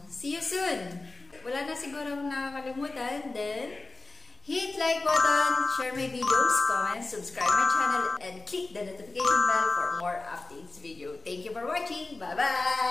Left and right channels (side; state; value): right; quieter; 3.5 dB